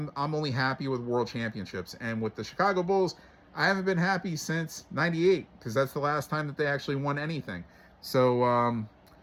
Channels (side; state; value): both; identical; correlation 1.00